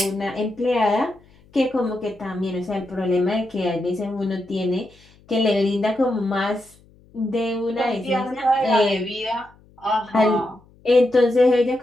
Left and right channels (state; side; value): noise; left; hum, 29 dB below the sound